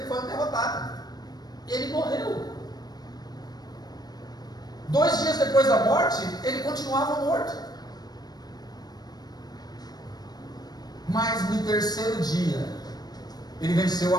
foi um derrotado. Ele morreu. 2 dias depois da morte, ele continuava morto. Mas no terceiro dia, ele venceu a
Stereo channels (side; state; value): right; late; 0.19 ms